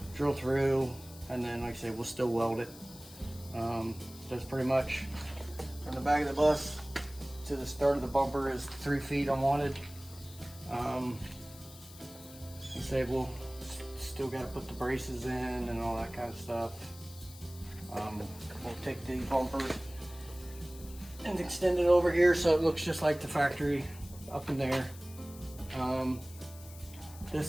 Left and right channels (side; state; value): left; noise; hiss, 18 dB below the sound